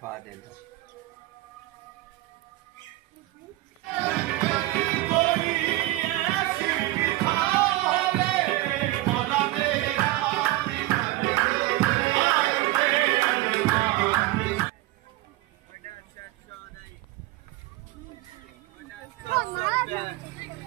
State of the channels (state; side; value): quieter; left; 18.2 dB